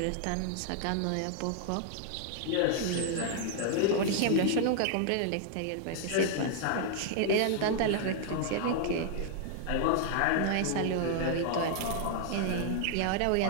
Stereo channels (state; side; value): different; both; correlation -0.01